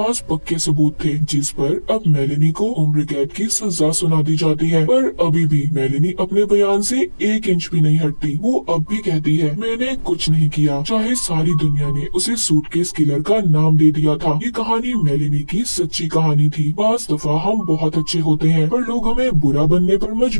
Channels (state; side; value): inverted; both; correlation -1.00